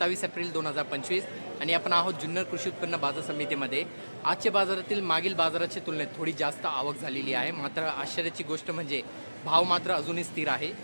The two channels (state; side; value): inverted; both; correlation -1.00